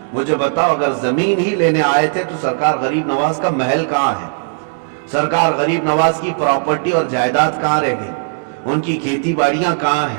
مجھے بتاؤ، اگر زمین ہی لینے آئے تھے تو سرکار غریب نواز کا محل کہاں ہے؟ سرکار غریب نواز کی پراپرٹی اور جائیداد کہاں رہ گئی؟ ان کی کھیتی باڑیاں کہاں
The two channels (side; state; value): left; silent; digital silence